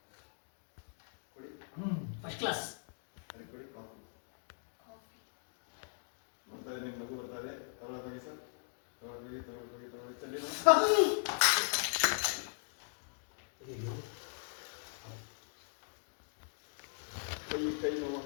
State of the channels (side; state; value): right; silent; digital silence